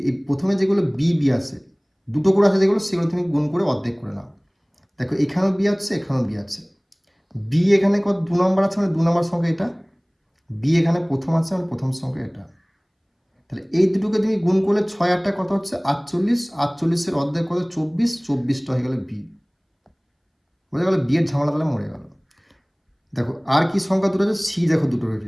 প্রথমে যেগুলো বি আছে, দুটো করে আছে যেগুলো, সেগুলো তুমি গুণ করে অর্ধেক করে নাও। দেখো এখানেও বি আছে, এখানেও বি আছে, বি এখানে কত 2 নম্বর আছে, মানে 2 নম্বর সংখ্যা এটা, বি এখানে প্রথম আছে, মানে প্রথম সংখ্যা এটা, তাহলে এই দুটোকে তুমি গুণ করলে 6 8টা কত হচ্ছে 48, 48-এর অর্ধেক কত 24, 24টা হয়ে গেল বি। বোঝা গেল? বি এর ঝামেলা তাহলে মরে গেল। দেখো আর কি সংখ্যা দুটো আছে, সি দেখো দুটো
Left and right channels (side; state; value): both; identical; correlation 1.00